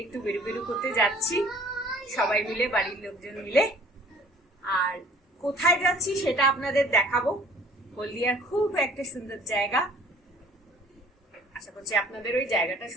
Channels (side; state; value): both; normal; correlation 0.52